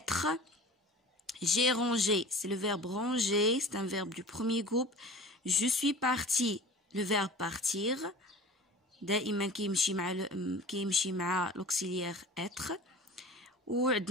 J'ai rangé, c'est le verbe ranger, c'est un verbe du premier groupe. Je suis parti, le verbe partir. دائما كيمشي مع l'auxiliaire être.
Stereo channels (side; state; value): both; normal; correlation 0.40